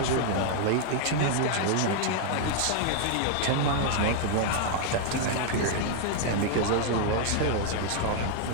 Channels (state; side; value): different; both; correlation 0.00